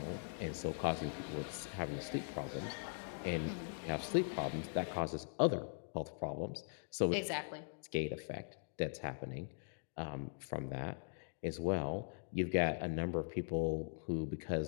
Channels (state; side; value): silent; right; digital silence